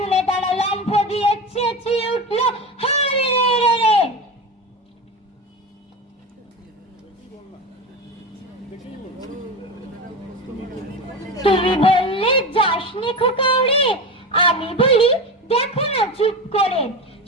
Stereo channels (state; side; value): normal; both; correlation 0.24